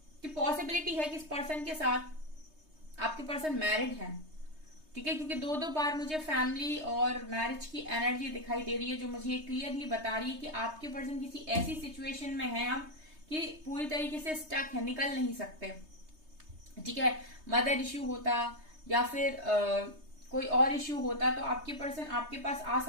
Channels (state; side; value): late; left; 3.2 ms